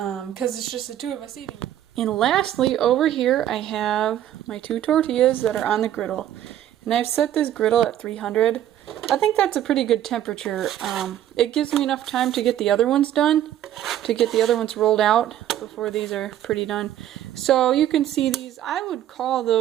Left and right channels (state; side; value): quieter; left; 11.7 dB